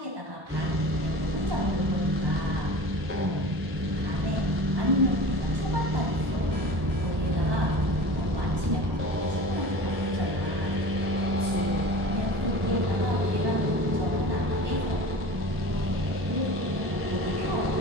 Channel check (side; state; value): left; late; 1.1 ms